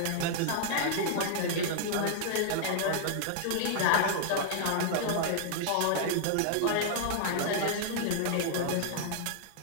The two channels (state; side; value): different; both; correlation -0.01